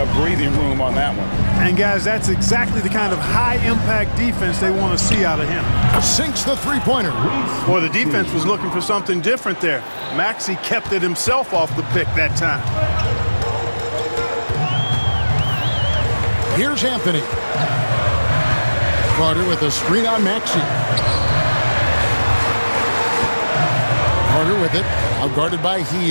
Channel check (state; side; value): inverted; both; correlation -1.00